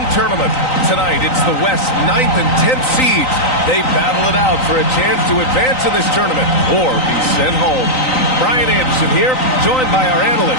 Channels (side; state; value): right; late; 3.9 ms